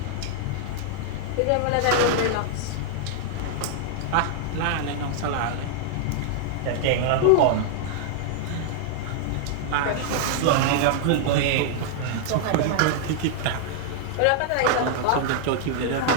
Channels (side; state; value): both; different; correlation -0.01